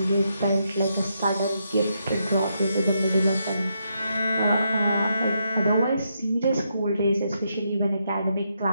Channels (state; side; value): inverted; both; correlation -0.80